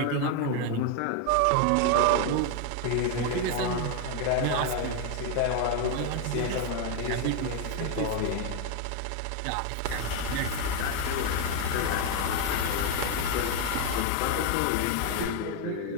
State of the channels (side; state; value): both; different; correlation 0.01